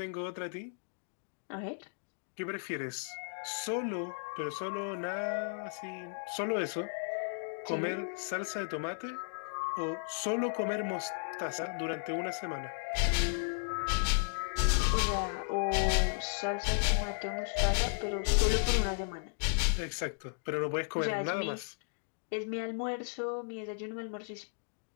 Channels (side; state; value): right; silent; digital silence